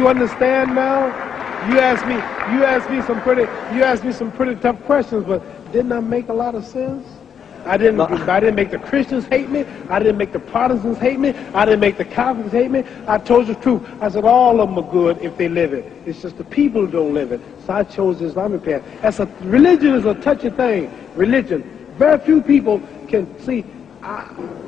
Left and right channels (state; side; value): quieter; right; 7.9 dB